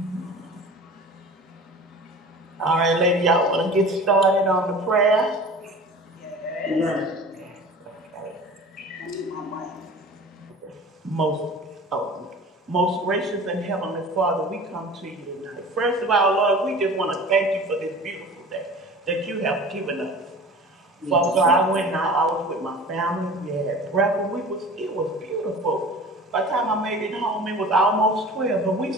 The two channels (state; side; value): normal; both; correlation 0.40